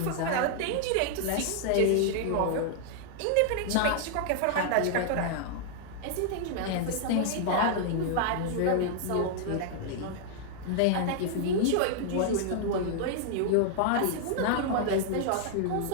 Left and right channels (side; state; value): both; different; correlation -0.01